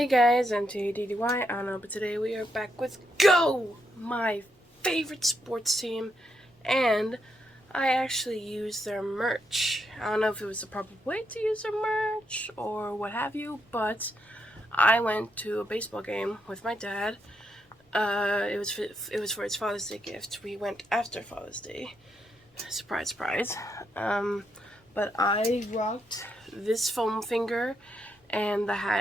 guys, M.A.D.D.Y. I don't know, but today we are back with Go! My favorite sports team, and I actually used their merch. I don't know if it was the proper way to use their merch or what have you, but I went to a baseball game with my dad. It was for his Father's Day gift. We went after Father's Day. Surprise, surprise. But I rocked this foam finger and the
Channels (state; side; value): normal; both; correlation 0.80